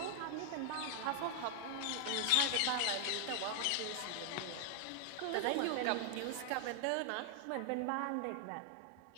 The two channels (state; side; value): different; both; correlation 0.00